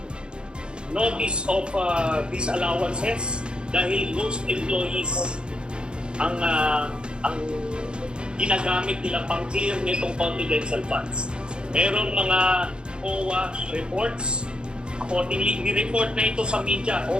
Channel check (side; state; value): left; late; 0.052 ms